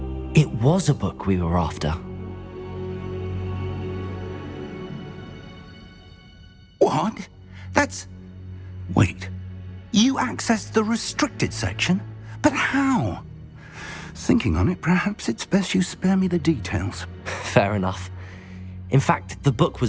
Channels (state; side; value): identical; both; correlation 1.00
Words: It was a book we were after. What? That's... Wait. You accessed the restricted section? But how? Thinking on it, perhaps it's best you spare me the details. Fair enough. In fact, the book